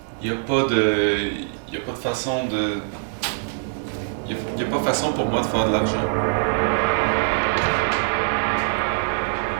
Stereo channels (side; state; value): left; silent; 63 dB below the other